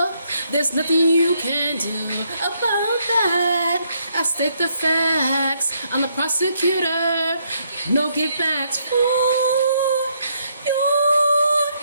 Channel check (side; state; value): both; inverted; correlation -0.73